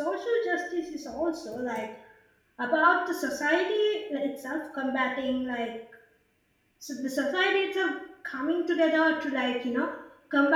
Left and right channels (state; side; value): identical; both; correlation 1.00